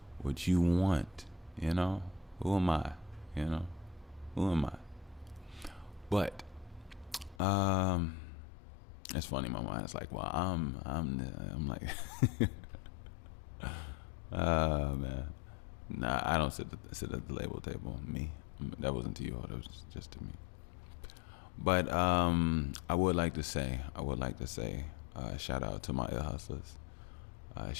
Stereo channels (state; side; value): drops out; right; at 7.4 s